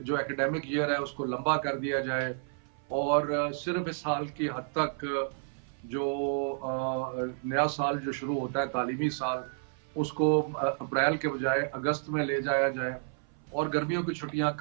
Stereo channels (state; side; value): silent; left; 56 dB below the other